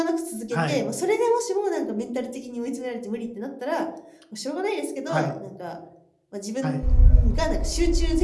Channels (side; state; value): both; identical; correlation 1.00